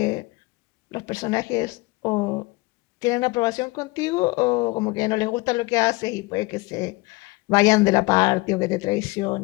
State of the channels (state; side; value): quieter; right; 23.6 dB